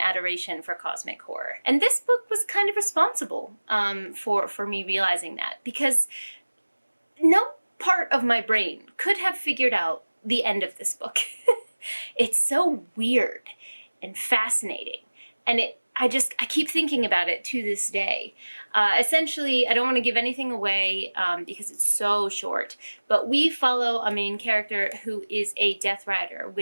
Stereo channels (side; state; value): both; inverted; correlation -1.00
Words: adoration for cosmic horror. And this book was kind of responsible for me realizing that, because no part of my brain could have figured out the end of this book. It's so weird and fascinating. And I keep thinking about it to this day. Essentially, I don't want to give anything away because it's so short, but we follow a main character who is a Death Rider,